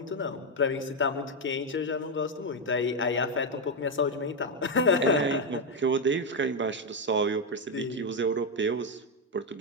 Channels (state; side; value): normal; both; correlation 0.05